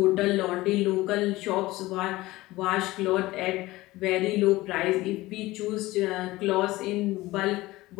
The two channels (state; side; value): quieter; right; 18.8 dB